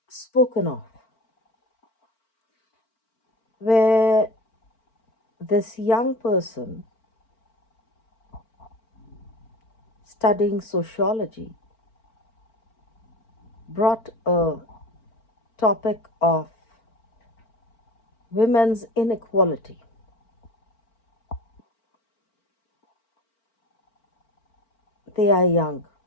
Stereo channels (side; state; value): right; late; 4.4 ms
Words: spoken of where this young person studying sociology brought a topic of women's inequality. They are young